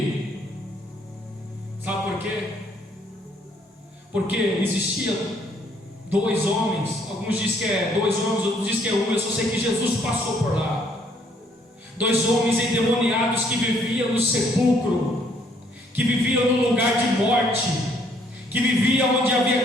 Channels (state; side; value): normal; both; correlation 0.66